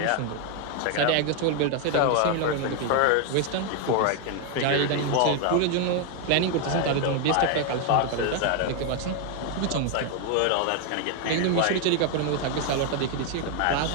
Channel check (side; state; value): both; different; correlation 0.01